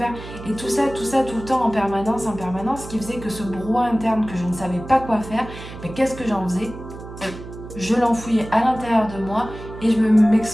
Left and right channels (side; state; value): right; noise; hum, 13 dB below the sound